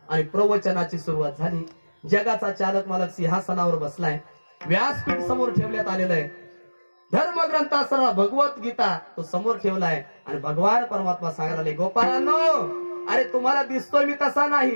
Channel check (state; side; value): inverted; both; correlation -1.00